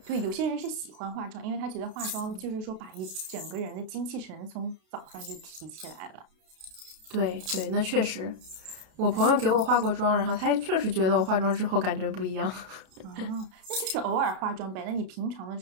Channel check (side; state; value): left; late; 32 ms